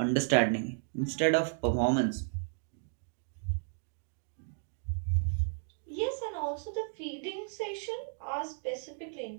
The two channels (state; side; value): silent; left; 55 dB below the other